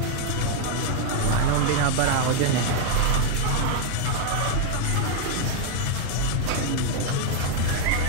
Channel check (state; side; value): different; both; correlation 0.00